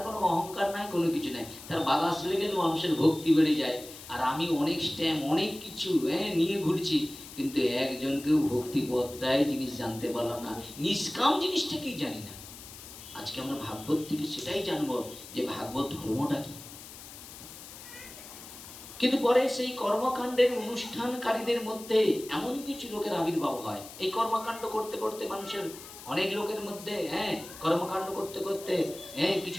কোনো অহংকার নাই, কোনো কিছু নাই, তার বাতাস লেগে মানুষের ভক্তি বেড়ে যায়। আর আমি অনেক স্ট্যাম্প, অনেক কিছু নিয়ে ঘুরছি, কিন্তু একজনকেও ভক্তি পত্রায় জিনিস জানতে পারলাম না, নিষ্কাম জিনিসটা কি জানি না। আজকে আমরা ভাগবত থেকে সেটাই জানবো যে ভাগবত ধর্মটা কি। কিন্তু পরে সেই কর্মকাণ্ডের অনুষ্ঠানকারীদের মধ্যে এমন কিছু লোকের আবির্ভাব হয়। এই কর্মকাণ্ড করতে করতে মানুষের অনেক লোকের মধ্যে কর্মকাণ্ড করতে করতে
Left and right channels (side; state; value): left; noise; hiss, 15 dB below the sound